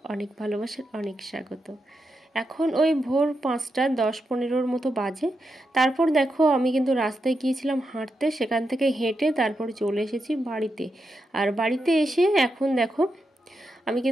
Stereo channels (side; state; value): both; normal; correlation 0.86